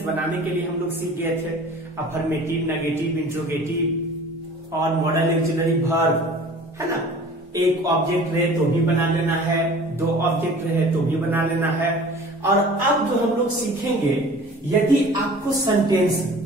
बनाने के लिए हम लोग सीख गए थे अफर्मेटिव, नेगेटिव, इंट्रोगेटिव और मॉडल ऑक्सिलरी वर्ब, है ना। एक ऑब्जेक्ट रहे तो भी बना लेना है, 2 ऑब्जेक्ट रहे तो भी बना लेना है। और अब जो हम लोग सीखेंगे, यदि आपको सेंटेंस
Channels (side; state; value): both; normal; correlation 0.45